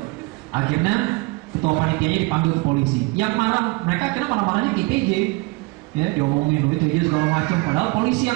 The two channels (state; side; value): quieter; left; 24.8 dB